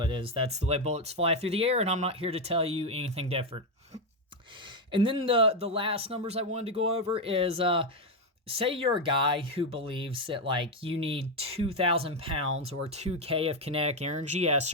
it is. That's the way bullets fly through the air, and I'm not here to tell you anything different. And then the last numbers I wanted to go over is, say you're a guy who believes that, like, you need 2,000 pounds or 2K of kinetic energy at a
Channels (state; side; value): normal; both; correlation 0.06